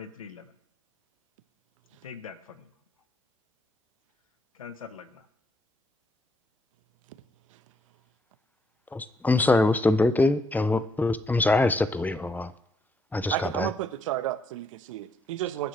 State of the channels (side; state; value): both; normal; correlation 0.74